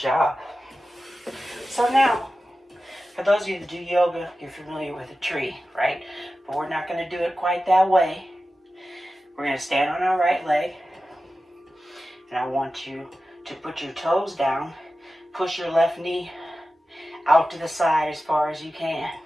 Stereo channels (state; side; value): normal; both; correlation 0.94